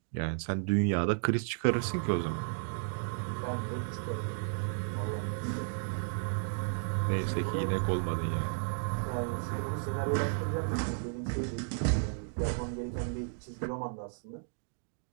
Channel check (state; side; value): silent; left; digital silence